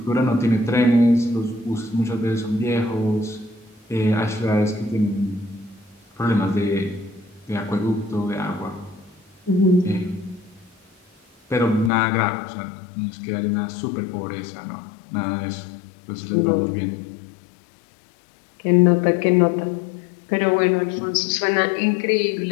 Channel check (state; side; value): drops out; right; at 11.9 s